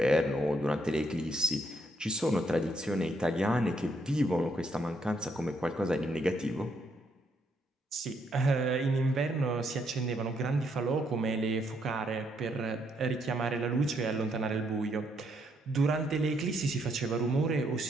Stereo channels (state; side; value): normal; both; correlation 0.74